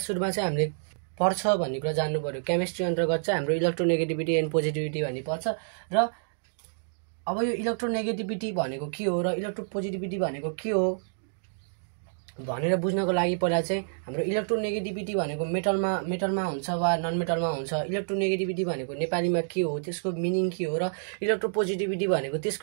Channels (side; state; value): left; silent; digital silence